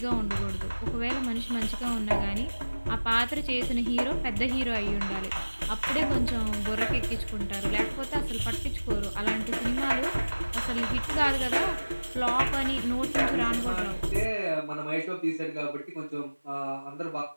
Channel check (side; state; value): both; inverted; correlation -1.00